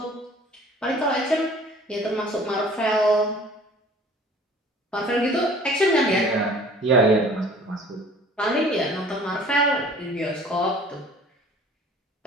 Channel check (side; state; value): both; normal; correlation 0.50